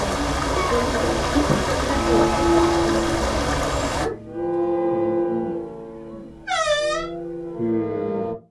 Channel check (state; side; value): identical; both; correlation 1.00